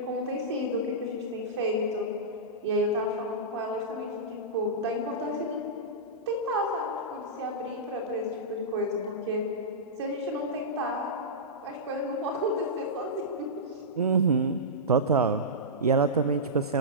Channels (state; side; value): normal; both; correlation -0.15